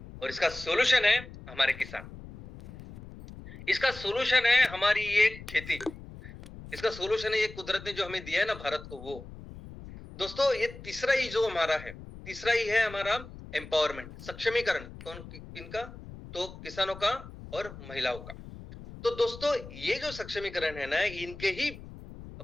और इसका सोल्यूशन है हमारे किसान, इसका सोल्यूशन है हमारी ये खेती, इसका सोल्यूशन है ये कुदरत ने जो हमें दिया है ना भारत को, वो दोस्तों ये तीसरा ही जो हमारा है, तीसरा ही है हमारा एम्पावरमेंट, सक्षमीकरण। कौन किनका, तो किसानों का और महिलाओं का। तो दोस्तों ये जो सक्षमीकरण है ना, इनके ही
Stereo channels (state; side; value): noise; left; rumble, 15 dB below the sound